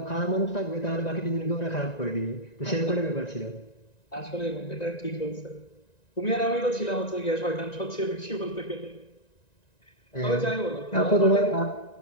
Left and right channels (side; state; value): right; late; 1.9 ms